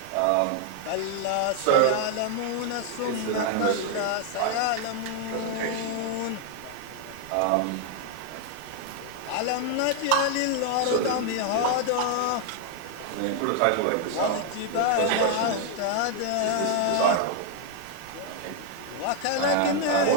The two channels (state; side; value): different; both; correlation 0.00